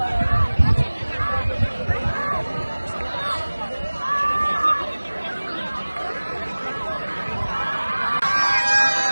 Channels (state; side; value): inverted; both; correlation -1.00